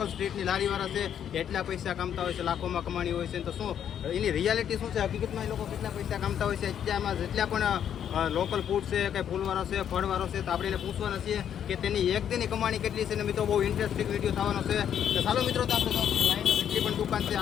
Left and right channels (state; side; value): quieter; right; 9.2 dB